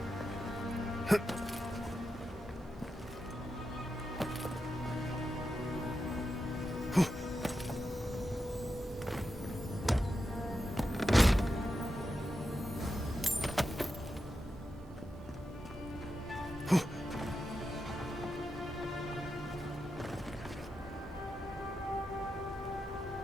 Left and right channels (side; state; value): both; normal; correlation 0.88